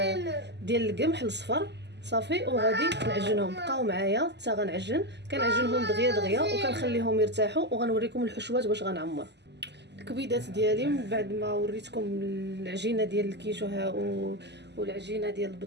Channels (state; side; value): late; left; 0.50 ms